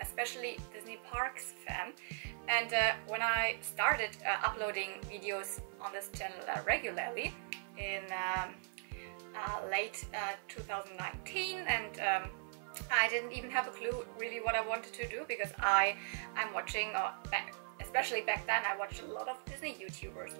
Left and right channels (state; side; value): silent; left; 52 dB below the other